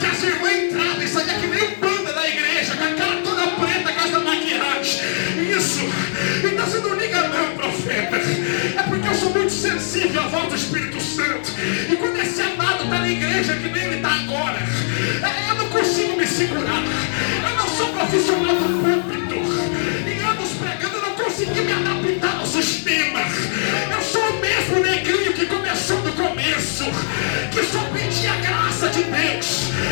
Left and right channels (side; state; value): right; silent; digital silence